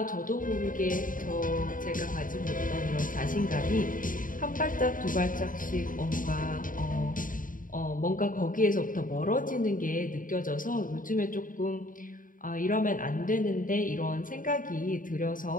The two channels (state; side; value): late; right; 0.39 ms